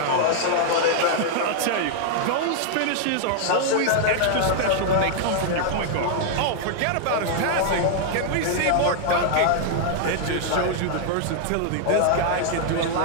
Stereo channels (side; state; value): both; different; correlation -0.01